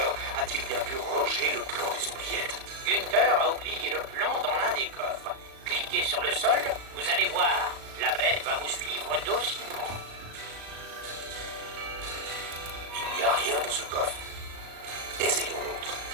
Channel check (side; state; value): left; late; 36 ms